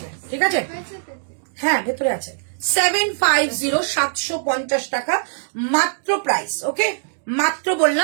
ঠিক আছে, হ্যাঁ ভেতরে আছে। 750 750 টাকা মাত্র প্রাইস। ওকে, মাত্র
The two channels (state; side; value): silent; left; digital silence